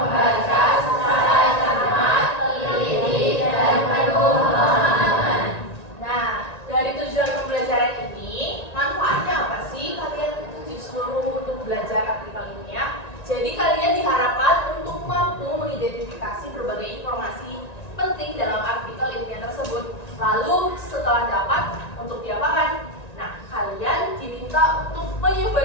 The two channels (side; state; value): right; late; 1.9 ms